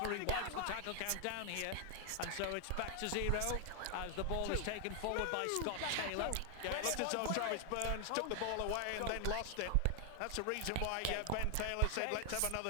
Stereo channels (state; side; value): different; both; correlation 0.00